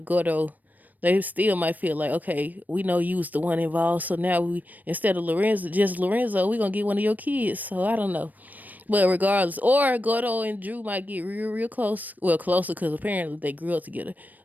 Gordo, they still might feel like, okay, we know you was the one involved, so now instead of Lorenzo, we gonna get one of your kids. So I don't know. But regardless, or Gordo and Drew might get real, real close. Well, closer because apparently they grew up together.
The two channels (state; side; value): late; left; 0.083 ms